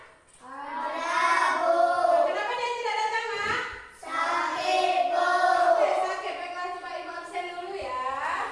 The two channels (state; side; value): identical; both; correlation 1.00